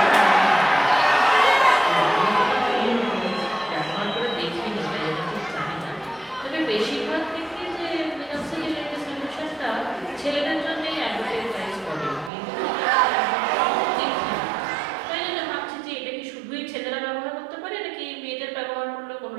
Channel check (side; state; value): left; drops out; at 12.3 s